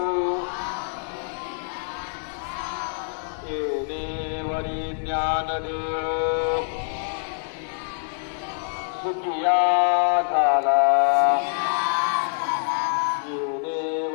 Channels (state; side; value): silent; right; digital silence